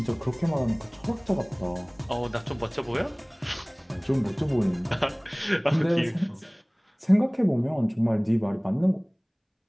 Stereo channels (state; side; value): identical; both; correlation 1.00